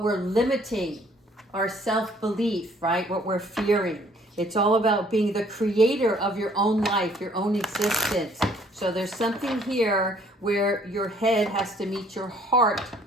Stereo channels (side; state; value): both; normal; correlation 0.60